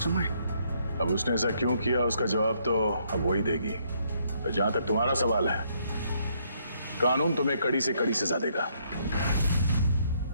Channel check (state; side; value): inverted; both; correlation -0.71